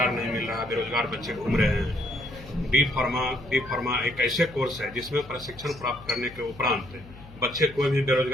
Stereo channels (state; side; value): noise; left; hum, 19 dB below the sound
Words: नहीं मिल रहा, बेरोजगार बच्चे घूम रहे हैं। बी फार्मा एक ऐसे कोर्स है जिसमें प्रशिक्षण प्राप्त करने के उपरांत बच्चे कोई भी